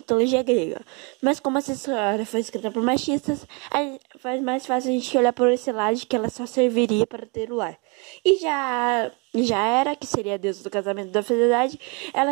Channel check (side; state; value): left; quieter; 30.9 dB